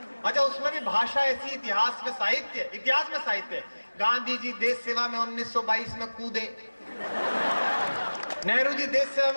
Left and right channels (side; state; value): both; inverted; correlation -1.00